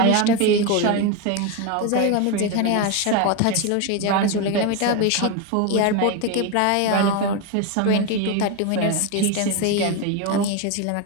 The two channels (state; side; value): different; both; correlation 0.02